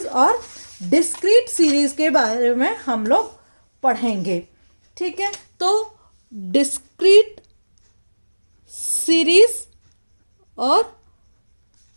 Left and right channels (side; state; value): both; inverted; correlation -1.00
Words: और डिस्क्रीट सीरीज के बारे में हम लोग पढ़ेंगे। ठीक है, तो डिस्क्रीट सीरीज और